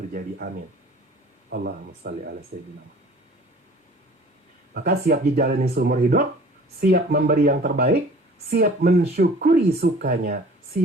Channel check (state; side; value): normal; both; correlation 0.48